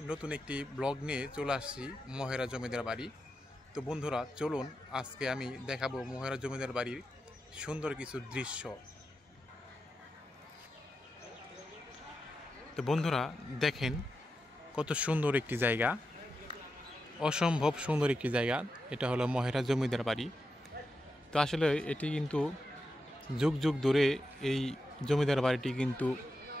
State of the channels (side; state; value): both; normal; correlation 0.88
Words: নতুন একটি ব্লগ নিয়ে চলে আসছি মহেরা জমিদার বাড়ি। তো বন্ধুরা, চলুন আজকে আমি দেখাবো মহেরা জমিদার বাড়ির সুন্দর কিছু দৃশ্য। তো বন্ধুরা দেখেন, কত সুন্দর একটি জায়গা, অসম্ভব সুন্দর একটি জায়গা। এটা হলো মহেরা জমিদার বাড়ি। তো আসলে এটি কিন্তু যুগ যুগ ধরে এই জমিদার বাড়িটি কিন্তু